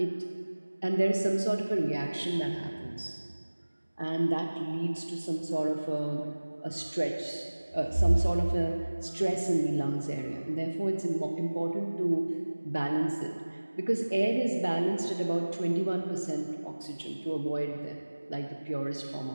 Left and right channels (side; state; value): both; inverted; correlation -1.00